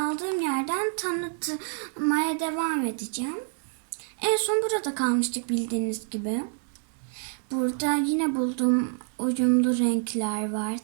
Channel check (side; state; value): left; silent; digital silence